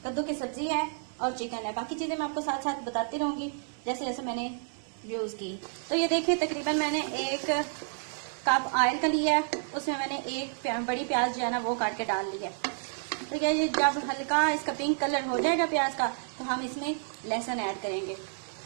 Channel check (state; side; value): silent; left; digital silence